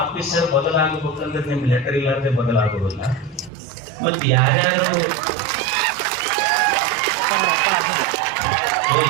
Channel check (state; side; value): drops out; left; at 3.5 s